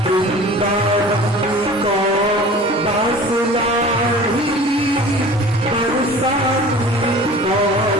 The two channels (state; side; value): normal; both; correlation 0.42